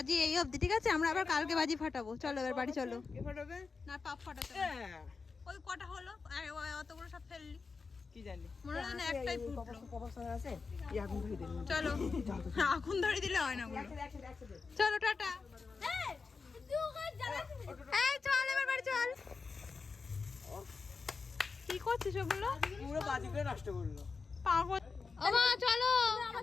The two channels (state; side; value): quieter; right; 4.7 dB